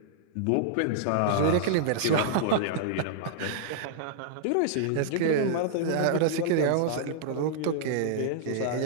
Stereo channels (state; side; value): different; both; correlation -0.01